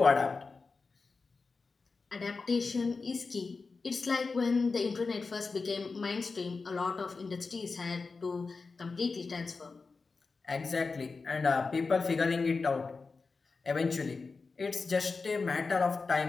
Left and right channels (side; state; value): right; quieter; 4.3 dB